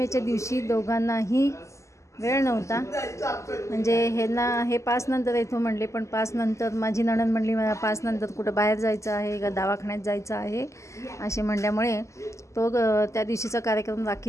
दिवशी दोघांनाही वेळ नव्हता, म्हणजे हे 5 नंतर येतो म्हणले, पण 5 नंतर माझी नणंद म्हणली मला 5 नंतर कुठं बाहेर जायचं आहे का दवाखान्यात जायचं आहे असे म्हणल्यामुळे तो त्या दिवशीचा कार्यक्रम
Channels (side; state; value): right; late; 0.14 ms